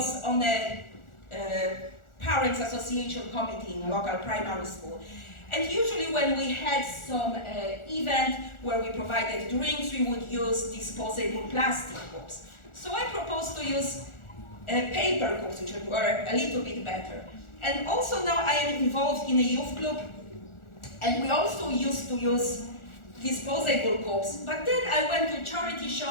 on a Parents Association committee in a local primary school. And usually when we had some event where we provided drinks, we would use disposable plastic cups. So I proposed to use paper cups, which were a little bit better. And also now I am involved in a youth club, and we also used to use disposable cups. But then I went to a charity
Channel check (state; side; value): late; right; 1.4 ms